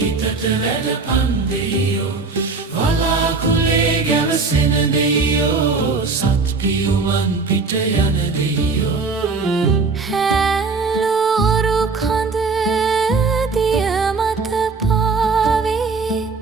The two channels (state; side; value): quieter; left; 4.3 dB